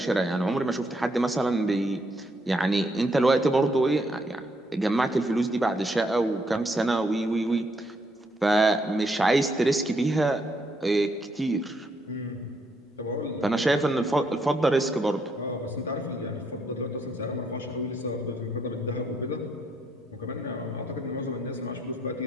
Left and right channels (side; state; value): both; normal; correlation 0.74